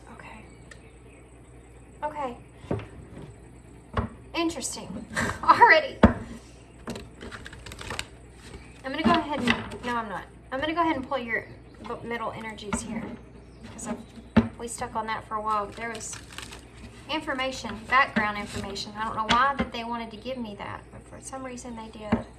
Okay. Okay. Interesting. Already. I'm going to go ahead and... No, I'm not. I'm going to go ahead and pull your middle energies here. Because we stuck on that for a while, but there was information, background information. I don't know why that they wanted to give me that, but for some reason they did.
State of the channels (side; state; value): both; identical; correlation 1.00